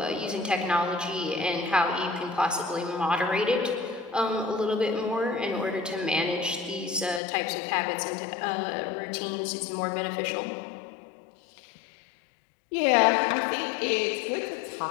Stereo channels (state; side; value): drops out; right; at 7.2 s